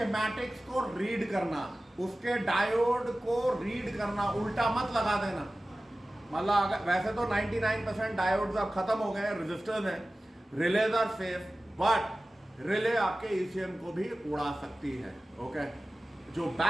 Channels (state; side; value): normal; both; correlation 0.96